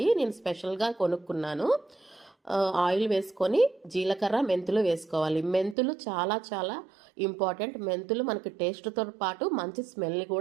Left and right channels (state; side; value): drops out; left; at 5.8 s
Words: నేను స్పెషల్గా కొనుక్కున్నాను. ఆయిల్ వేసుకొని జీలకర్ర మెంతులు వేసుకోవాలి. మెంతులు చాలా చాలా ఇంపార్టెంట్. మెంతులు మనకి టేస్ట్తో పాటు మంచి స్మెల్ని